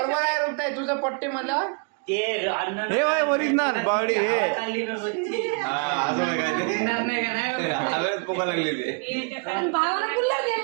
आहे रुपये तुझं पट्टी मला हे वय ओरिजिनल बावडी हे पोका लागली भावाला गुल्ला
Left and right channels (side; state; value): left; quieter; 36.6 dB